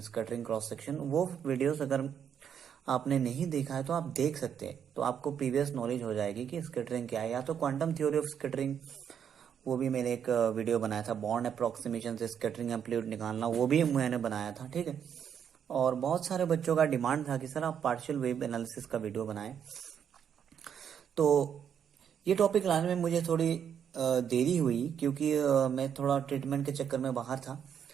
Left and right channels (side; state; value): left; quieter; 8.3 dB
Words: scattering cross section, वो वीडियोस अगर आपने नहीं देखा है तो आप देख सकते हैं, तो आपको प्रीवियस नॉलेज हो जाएगी कि स्कैटरिंग क्या है। या तो क्वांटम थ्योरी ऑफ स्कैटरिंग, वो भी मैंने एक वीडियो बनाया था, बॉन्ड अप्रोक्सीमेशन से स्कैटरिंग एम्पलीट्यूड निकालना, वो भी मैंने बनाया था। ठीक है, और बहुत सारे बच्चों का डिमांड था कि सर आप पार्शियल वेव एनालिसिस का वीडियो बनाएं। तो ये टॉपिक लाने में मुझे थोड़ी देरी हुई, क्योंकि मैं थोड़ा ट्रीटमेंट के चक्कर में बाहर था।